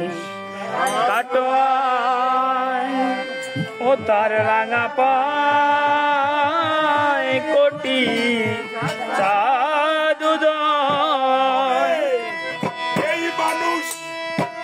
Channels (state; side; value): identical; both; correlation 1.00